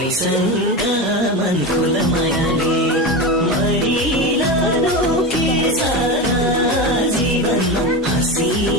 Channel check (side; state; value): both; normal; correlation 0.21